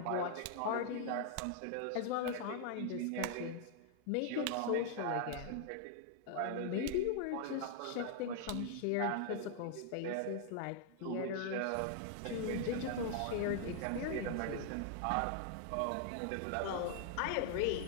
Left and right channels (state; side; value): different; both; correlation 0.00